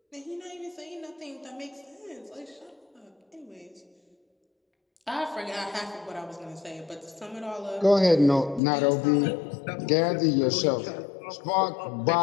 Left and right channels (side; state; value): right; drops out; at 8.6 s